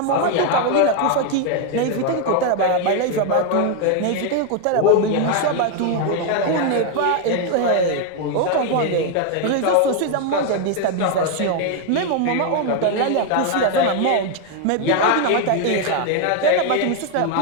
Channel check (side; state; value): both; different; correlation 0.01